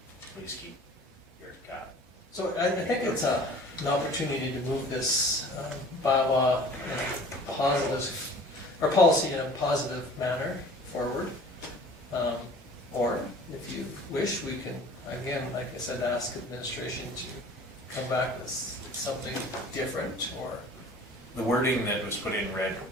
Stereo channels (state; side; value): normal; both; correlation 0.47